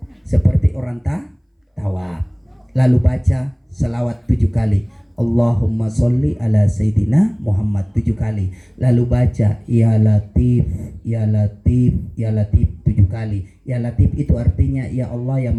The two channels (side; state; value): both; identical; correlation 1.00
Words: seperti orang tawaf, lalu baca selawat 7 kali, Allahumma sholli ala Sayyidina Muhammad 7 kali, lalu baca ya Latif ya Latif ya Latif 7 kali. Ya Latif itu artinya ya Allah yang